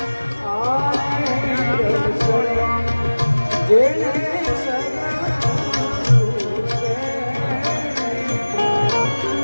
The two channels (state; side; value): inverted; both; correlation -1.00